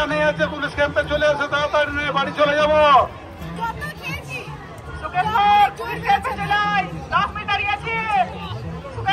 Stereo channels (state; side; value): identical; both; correlation 1.00